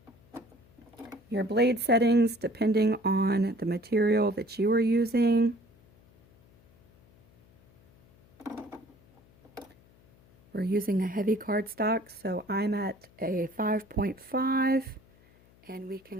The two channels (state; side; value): noise; left; hum, 29 dB below the sound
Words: your blade settings depending on the material that you are using. We're using a heavy cardstock, so I'm at a 5.5, and we